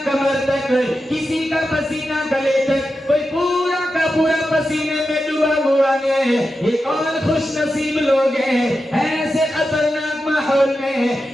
कमर तक, किसी का पसीना गले तक, कोई पूरा का पूरा पसीने में डूबा हुआ है। ये कौन खुश नसीब लोग हैं? ऐसे खतरनाक माहौल में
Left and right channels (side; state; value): both; normal; correlation 0.90